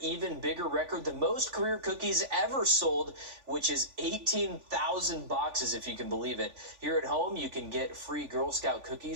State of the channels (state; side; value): late; left; 3.5 ms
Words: bigger record, the most career cookies ever sold, which is 18,000 boxes, if you can believe it. Here at home, you can get free Girl Scout